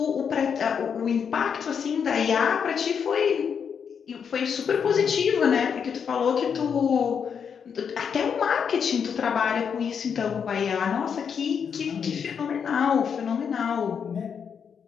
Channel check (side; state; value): right; quieter; 7.0 dB